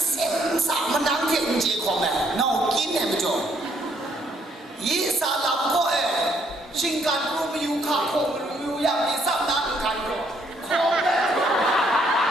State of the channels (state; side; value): normal; both; correlation 0.69